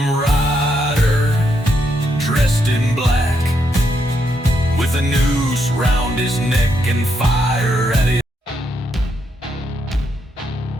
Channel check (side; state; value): both; normal; correlation 0.78